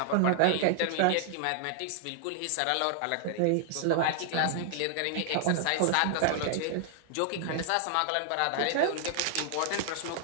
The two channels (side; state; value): both; different; correlation 0.00